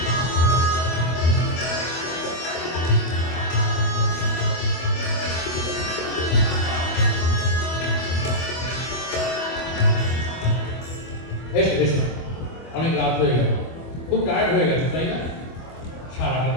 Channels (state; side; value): late; right; 25 ms